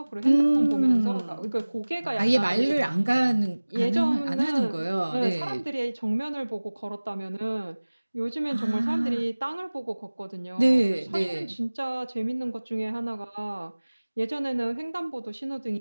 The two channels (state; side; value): inverted; both; correlation -1.00